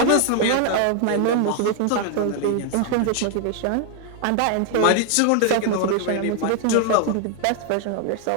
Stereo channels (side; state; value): both; different; correlation 0.00